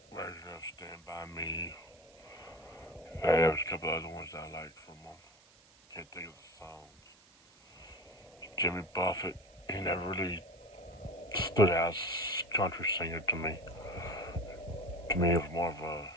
of Stand By Me. There's a couple other ones I like from him. Can't think of the songs. Jimmy Buffett, he never really stood out as a country singer to me. To me, it was more of a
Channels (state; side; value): noise; right; hiss, 27 dB below the sound